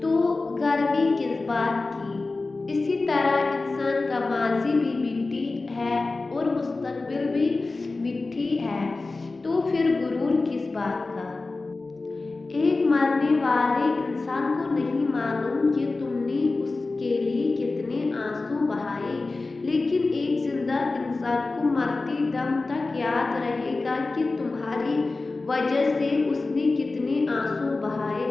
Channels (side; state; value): right; quieter; 3.5 dB